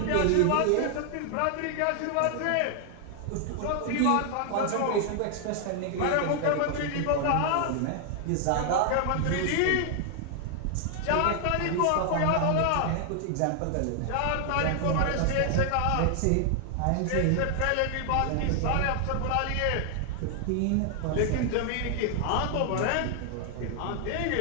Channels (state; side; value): different; both; correlation 0.00